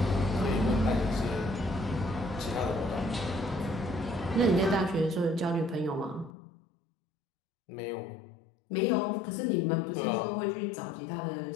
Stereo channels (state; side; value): drops out; right; at 6.3 s